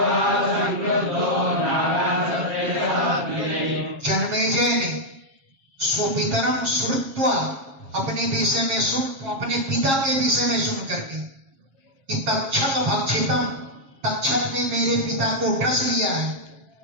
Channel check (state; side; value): late; left; 7.4 ms